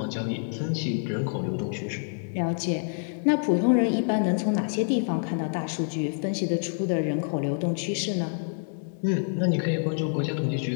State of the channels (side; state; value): right; silent; digital silence